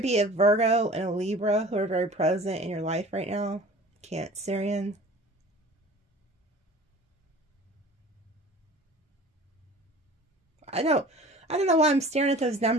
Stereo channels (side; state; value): both; normal; correlation 0.44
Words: be a Virgo and a Libra who are very present in your life right now. Cancerian. I don't know why I'm staring at those